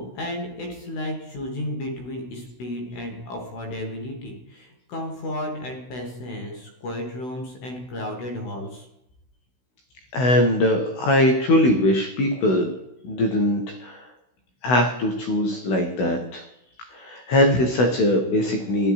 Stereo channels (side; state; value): right; late; 16 ms